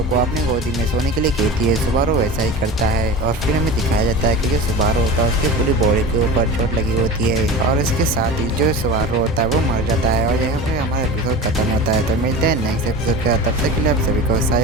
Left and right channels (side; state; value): both; normal; correlation 0.31